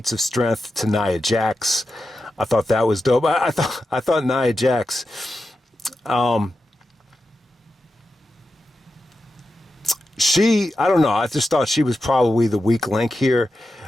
of strength to Nia Jax. I thought that was dope. I thought Nia Jax, I don't know. I just thought she was probably the weak link here.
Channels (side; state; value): both; normal; correlation 0.90